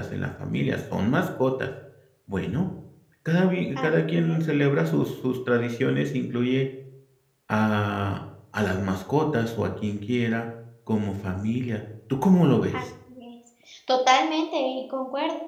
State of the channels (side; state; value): both; identical; correlation 1.00